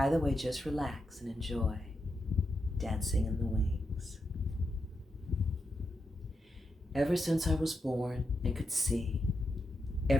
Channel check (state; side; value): normal; both; correlation 0.85